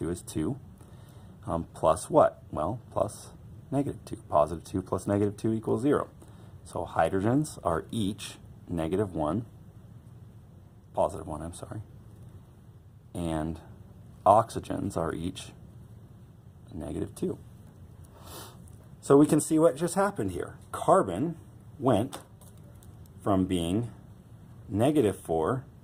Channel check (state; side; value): identical; both; correlation 1.00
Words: is 2. Plus what? Well, plus -2. +2 plus -2 equals 0. So hydrogens are each -1. +1, I'm sorry. And oxygens are each -2. So we can see what just happened here. Carbon went from being -4